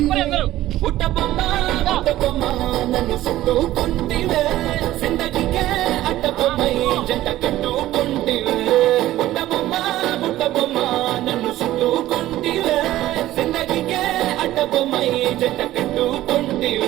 పుట్టబొమ్మ పుట్టబొమ్మ నన్ను చుట్టుకుంటివే జిందగీకే అడ్డబొమ్మై జంట కట్టుకుంటివే పుట్టబొమ్మ పుట్టబొమ్మ నన్ను చుట్టుకుంటివే జిందగీకే అడ్డబొమ్మై జంట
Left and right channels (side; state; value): left; quieter; 14.9 dB